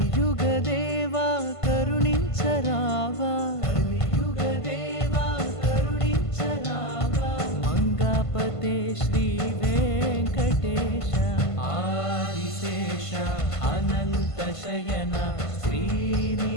కరుణించరావా కలియుగదేవా కరుణించరావా మంగాపతే శ్రీ వెంకటేశ ఆదిశేష అనంత శయన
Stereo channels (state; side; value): late; right; 1.5 ms